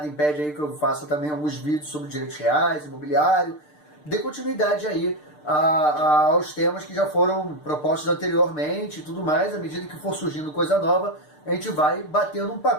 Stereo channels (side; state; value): right; late; 6.7 ms